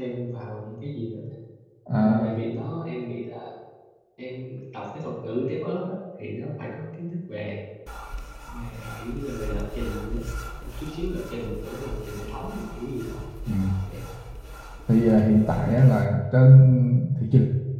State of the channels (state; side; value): identical; both; correlation 1.00